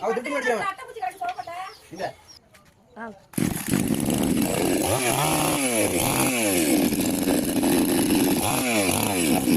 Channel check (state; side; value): identical; both; correlation 1.00